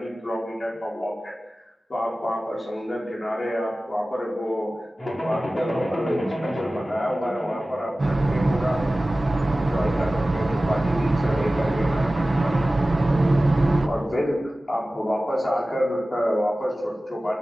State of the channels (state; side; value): normal; both; correlation 0.96